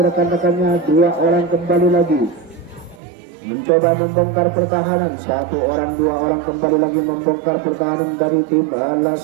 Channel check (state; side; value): drops out; left; at 3.0 s